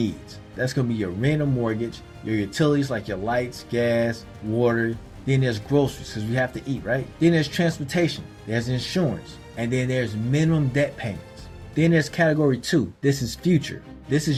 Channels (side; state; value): both; identical; correlation 1.00